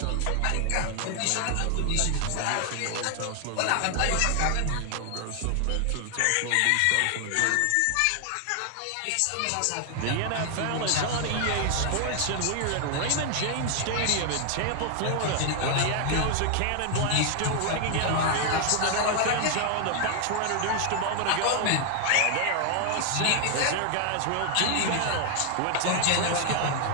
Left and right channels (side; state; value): both; different; correlation 0.00